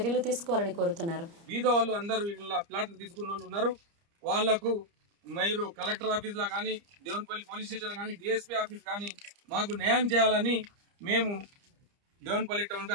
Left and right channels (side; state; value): left; late; 30 ms